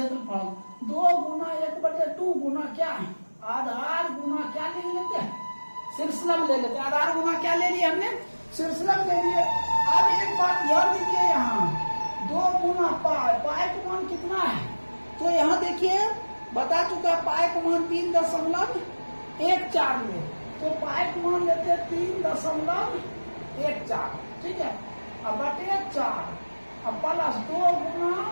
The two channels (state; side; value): inverted; both; correlation -1.00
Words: 2 गुना 1/2 गुना क्या है आधार गुना क्या ले लेते हैं शीर्षलंब ले लेते हैं। आधार गुना क्या ले लिया हमने शीर्षलंब ले लिए। अब एक बात ध्यान दीजिए यहाँ 2 गुना पाई पाई का मान कितना है तो यहाँ देखिए बता चुका पाई का मान 3.14 में तो पाई का मान लेते हैं 3.14 ठीक है अब बटे 4 अब प्लस 2 गुना